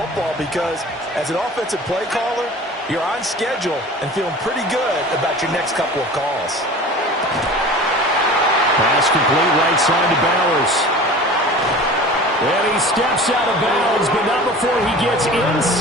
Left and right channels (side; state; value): both; normal; correlation 0.39